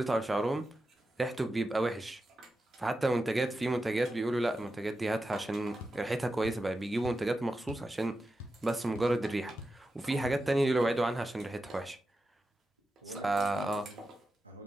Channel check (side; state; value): both; normal; correlation 0.91